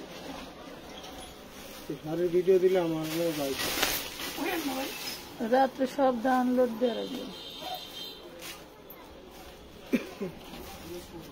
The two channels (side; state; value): both; identical; correlation 1.00